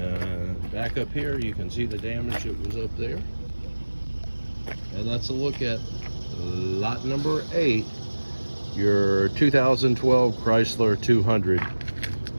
back up here, you can see the damage that was up there. And that's a look at lot number 8, your 2012 Chrysler 200.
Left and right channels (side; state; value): both; inverted; correlation -1.00